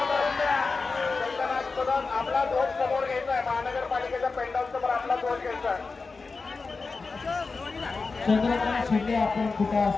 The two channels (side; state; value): right; quieter; 4.2 dB